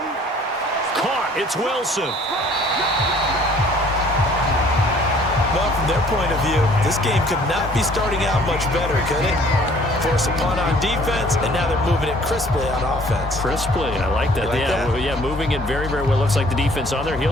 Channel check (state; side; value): normal; both; correlation 0.56